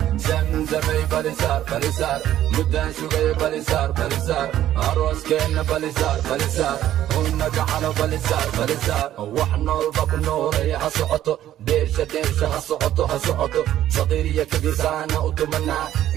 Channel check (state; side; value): quieter; left; 12.4 dB